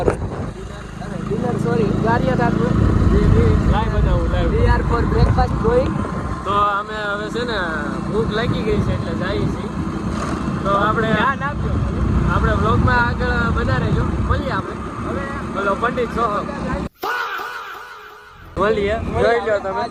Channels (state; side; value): identical; both; correlation 1.00